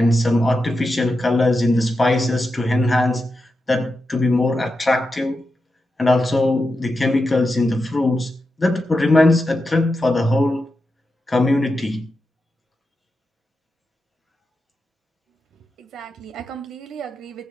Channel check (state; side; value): normal; both; correlation 0.89